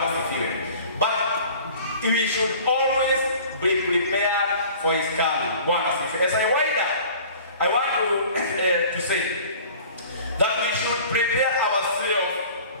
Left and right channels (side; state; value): both; inverted; correlation -0.46